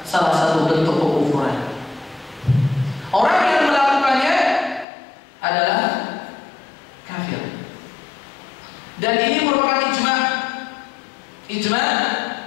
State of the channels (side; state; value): right; drops out; at 4.9 s